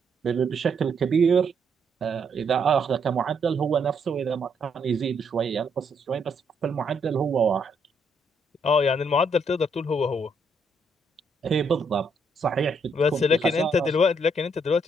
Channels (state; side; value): normal; both; correlation 0.73